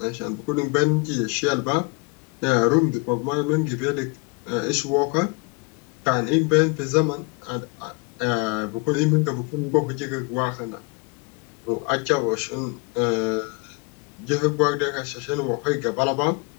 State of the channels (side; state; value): right; quieter; 29.3 dB